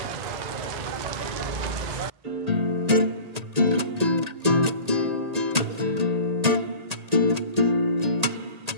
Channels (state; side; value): late; left; 1.8 ms